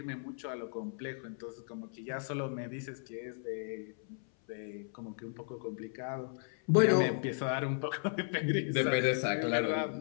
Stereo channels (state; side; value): silent; right; 54 dB below the other